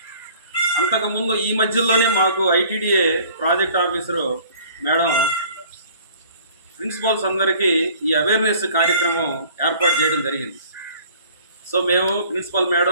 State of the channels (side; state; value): both; inverted; correlation -0.52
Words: అంతకుముందు ఈ మధ్యలోనే మాకు ITDA project officer madam principals అందరికీ ఈ అవేర్నెస్ కార్యక్రమం ఏర్పాటు చేయడం జరిగింది. సో మేము ప్రిన్సిపల్